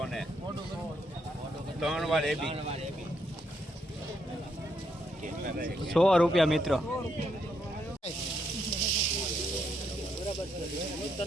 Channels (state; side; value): normal; both; correlation 0.77